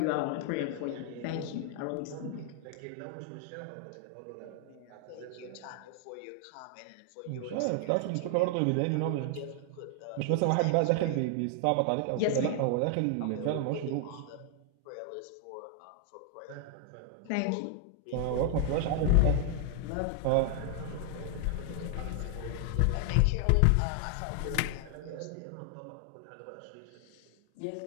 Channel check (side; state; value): both; different; correlation 0.00